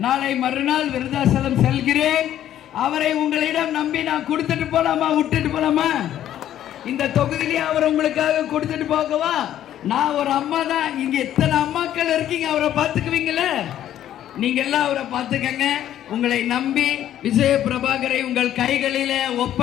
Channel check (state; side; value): quieter; right; 11.6 dB